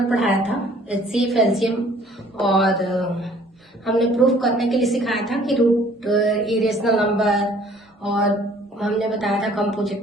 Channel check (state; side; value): normal; both; correlation 0.56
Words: पढ़ाया था, एचसीएफ, एलसीएम और हमने प्रूफ करने के लिए सिखाया था कि रूट इरेशनल नंबर, और हमने बताया था